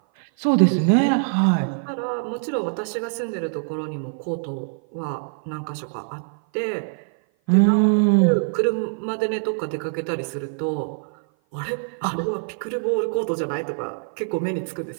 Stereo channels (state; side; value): silent; left; 56 dB below the other